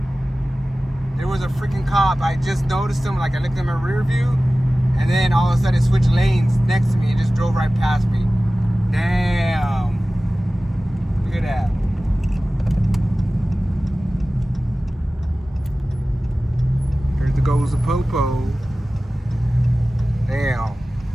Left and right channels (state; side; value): normal; both; correlation 0.96